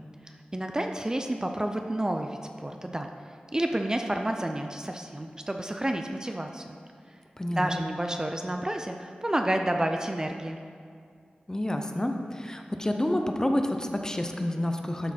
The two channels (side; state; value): both; normal; correlation 0.96